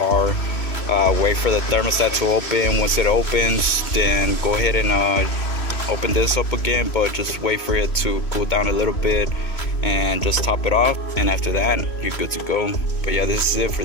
Wait for the thermostat to open. Once it opens, then go ahead and open this up again, but just wait for it to cool down a little bit and just top it off, and after that you're good to go. But yeah, this is it for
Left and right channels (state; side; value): late; right; 3.1 ms